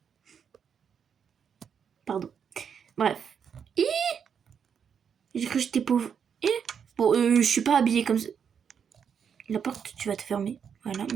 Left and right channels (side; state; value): left; quieter; 7.3 dB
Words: Pardon. Bref. J'ai cru que j'étais pauvre. Bon, je suis pas habillée comme ça. La porte, tu vas te fermer. Voilà,